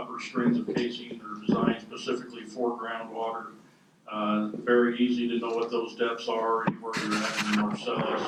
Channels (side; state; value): both; identical; correlation 1.00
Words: strings of casing are designed specifically for groundwater. Very easy to know what those depths are anywhere you're at in the Marcellus.